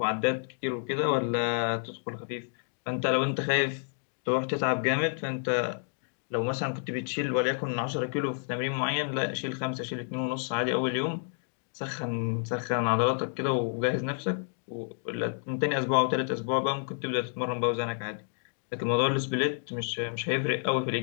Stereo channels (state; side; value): silent; right; 58 dB below the other